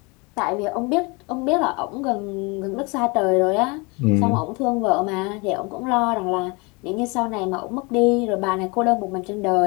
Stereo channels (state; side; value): quieter; right; 28.2 dB